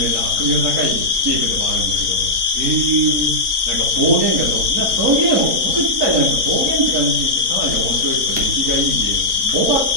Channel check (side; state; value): left; late; 3.7 ms